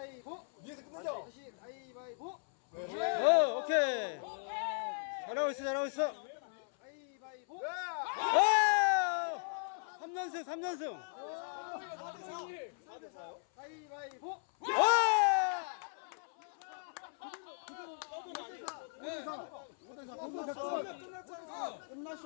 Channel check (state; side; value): silent; right; 53 dB below the other